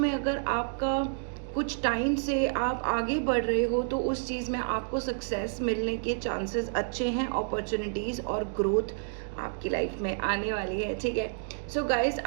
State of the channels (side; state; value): left; silent; digital silence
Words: अगर आपका कुछ टाइम से आप आगे बढ़ रहे हो तो उस चीज़ में आपको सक्सेस मिलने के चांसेस अच्छे हैं, अपॉर्चुनिटीज़ और ग्रोथ आपकी लाइफ में आने वाली है। ठीक है, सो गाइज